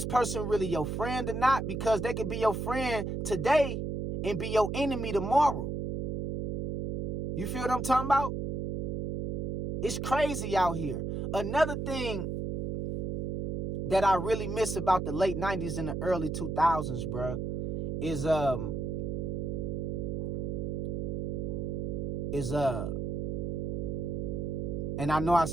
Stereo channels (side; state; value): right; noise; hum, 1 dB below the sound